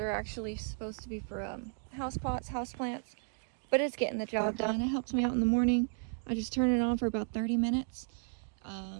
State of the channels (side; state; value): left; silent; 55 dB below the other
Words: actually supposed to be for house pots, house plants, but it's getting the job done. It helps me out in the morning. I just turn it on for about 30 minutes.